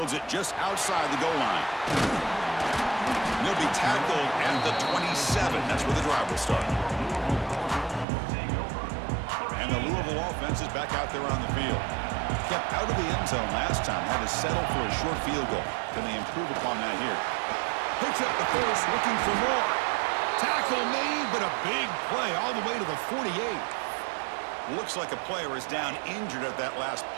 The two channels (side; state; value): left; drops out; at 8.1 s